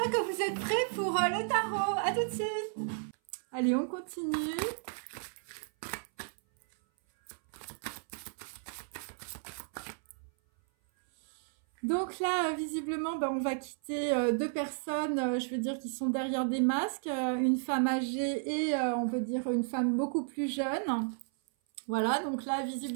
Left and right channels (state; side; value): silent; left; 56 dB below the other